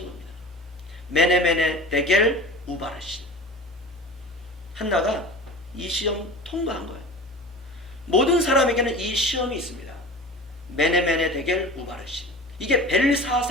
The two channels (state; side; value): normal; both; correlation 0.37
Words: 겁니다. 메네메네 데겔 우바르신. 한나가 이 시험 통과한 거예요. 모든 사람에게는 이 시험이 있습니다. 메네메네 데겔 우바르신. 이게